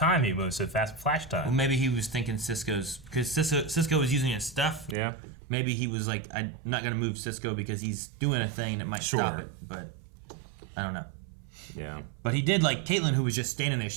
He moves so fast, flash time. Well, maybe he was thinking Cisco's because Cisco was using his stuff. Yeah. Maybe he was like, I'm not gonna move Cisco because he's doing a thing that might stop it. But I don't know. Yeah. But he did like Caitlyn, who was just standing there.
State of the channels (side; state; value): left; drops out; at 5.0 s